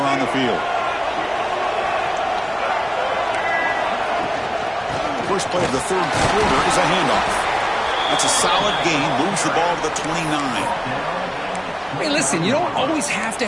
the field. First play of the 3rd quarter is a handoff. That's a solid gain. Moves the ball to the 29. Hey, listen, you don't always have to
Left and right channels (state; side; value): identical; both; correlation 1.00